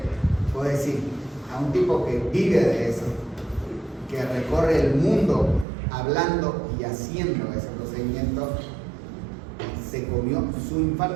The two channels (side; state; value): left; drops out; at 5.7 s